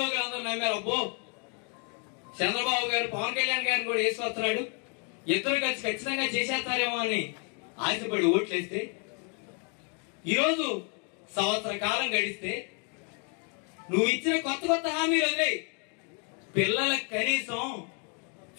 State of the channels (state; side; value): quieter; right; 38.2 dB